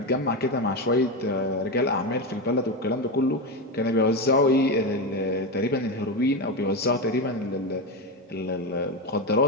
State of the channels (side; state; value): both; normal; correlation 0.14